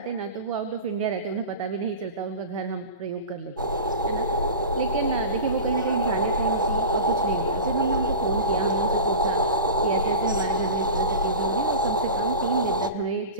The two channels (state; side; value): inverted; both; correlation -0.31